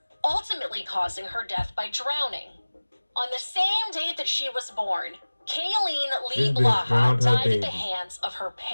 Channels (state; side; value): inverted; both; correlation -1.00